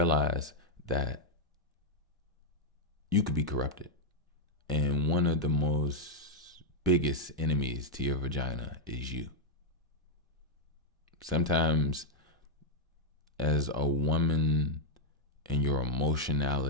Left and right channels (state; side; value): normal; both; correlation -0.03